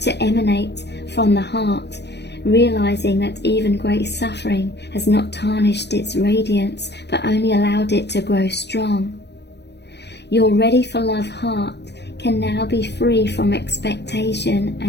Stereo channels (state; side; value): late; right; 0.50 ms